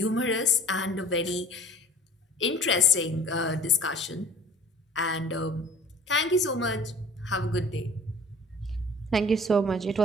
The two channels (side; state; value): both; normal; correlation 0.47